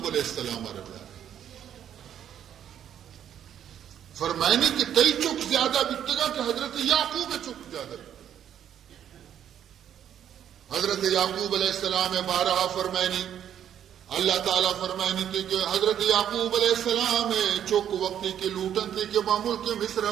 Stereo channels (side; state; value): left; quieter; 9.8 dB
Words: علیہ السلام رضا فرمائنی کہ کئی چک زیادہ بکتگا کہ حضرت یعقوب چک زیادہ حضرت یعقوب علیہ السلام بارہا فرمائنی اللہ تعالیٰ فرمائنی تھی کہ حضرت یعقوب علیہ السلام چک وقتی کے لوٹن تھی کہ معمول کے مصرہ